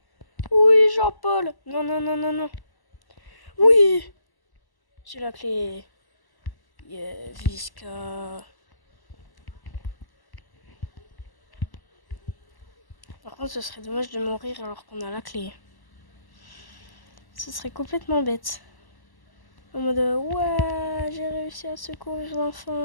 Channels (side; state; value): right; late; 1.0 ms